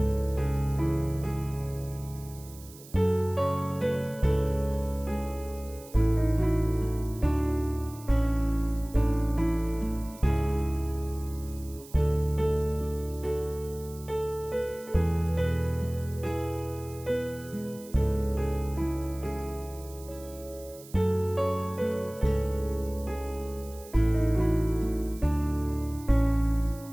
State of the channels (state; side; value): noise; right; hiss, 20 dB below the sound